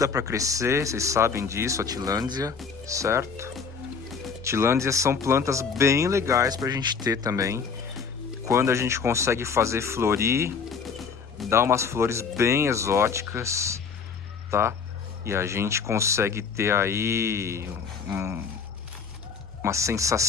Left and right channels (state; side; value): quieter; right; 5.8 dB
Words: para crescer, vocês sabem disso, a Tillandsia, certo? Tillandsias são plantas bem legais para a gente ter também. Quando a gente consegue fazer florir, dá umas flores bem exóticas, tá? E a gente consegue ter aí uma